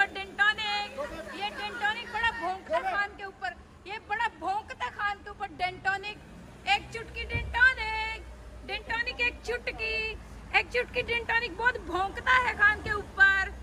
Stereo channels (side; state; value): both; identical; correlation 1.00